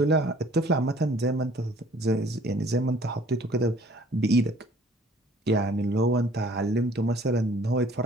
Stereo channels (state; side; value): normal; both; correlation 0.55